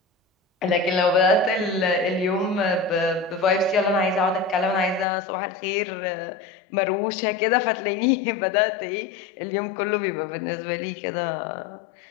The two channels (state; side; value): drops out; right; at 5.1 s